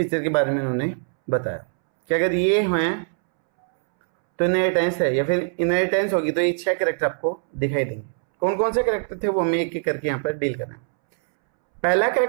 के बारे में उन्होंने बताया कि अगर ये हैं तो इनहेरिटेंस है, या फिर इनहेरिटेंस होगी तो ये 6 कैरेक्टर आपको दिखाई देंगे। कौन कौन से कैरेक्टर थे वो हमें एक एक करके यहाँ पर डील करना है। पहला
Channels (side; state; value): left; silent; 64 dB below the other